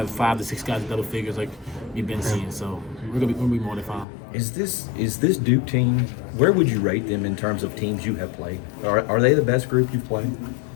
5 to 6 guys in double figures like we've been seeing. So we're gonna be more than fine. Is this Duke team? Where would you rate them in terms of teams you have played? Are they the best group you've played?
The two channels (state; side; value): drops out; right; at 4.0 s